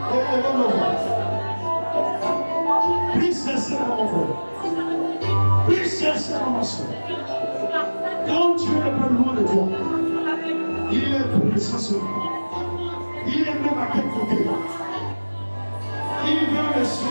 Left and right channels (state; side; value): inverted; both; correlation -1.00